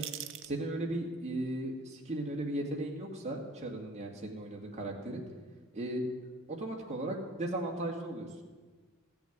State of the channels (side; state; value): both; normal; correlation 0.48